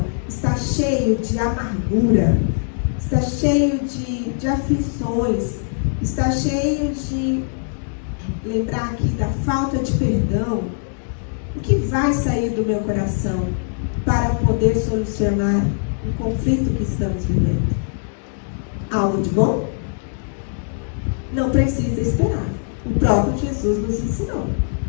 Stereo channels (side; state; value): right; silent; digital silence